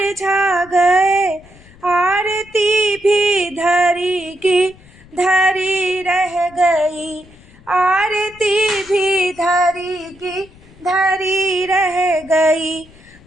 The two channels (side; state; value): left; noise; rumble, 24 dB below the sound